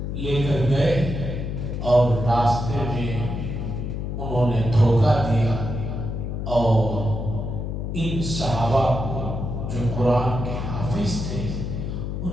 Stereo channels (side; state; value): left; noise; hum, 4 dB below the sound